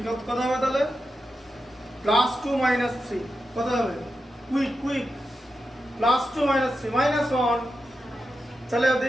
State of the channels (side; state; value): both; normal; correlation 0.89